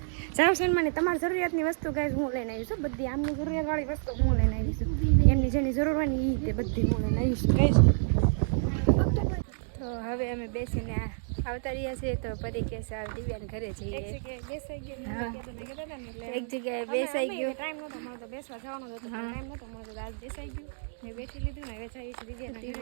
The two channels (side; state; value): left; silent; digital silence